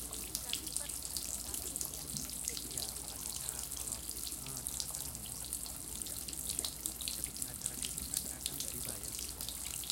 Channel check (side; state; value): both; identical; correlation 1.00